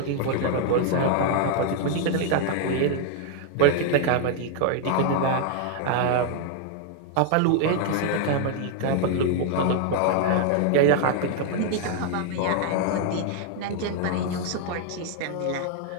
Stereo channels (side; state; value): both; different; correlation 0.00